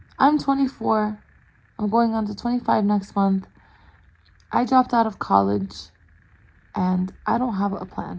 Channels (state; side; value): identical; both; correlation 1.00